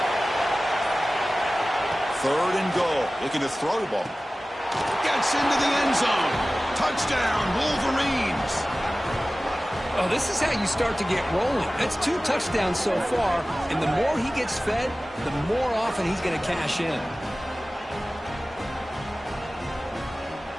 3rd and goal. Looking to throw the ball. Gets into the end zone. Touchdown, Wolverines. Oh, this is how you start to get rolling. That's 2 touchdowns so far, and the more he gets fed, the more often he's going to cash in.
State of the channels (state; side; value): normal; both; correlation 0.97